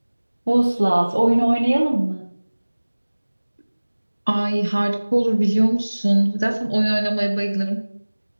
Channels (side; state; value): both; inverted; correlation -1.00